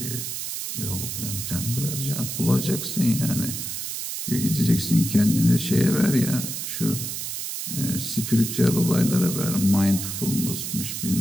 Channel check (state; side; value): noise; right; hiss, 5 dB below the sound